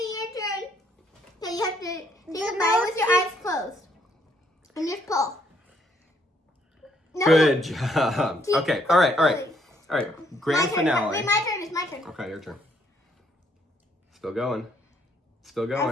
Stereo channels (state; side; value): normal; both; correlation 0.69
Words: your turn. So you have to take a bite with your eyes closed. And just pull. No. Good job. Keep Okay, all right. pulling. All right, grand My turn. finale. Wait, my turn. It's my turn. Okay, your turn. Still going. Still I